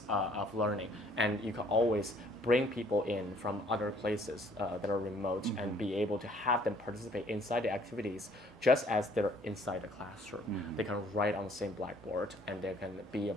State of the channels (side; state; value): both; normal; correlation 0.60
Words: of learning. And you can always bring people in from other places that are remote and be able to have them participate inside the activities just as they're inside the classroom. They can write on the same blackboard and they can be a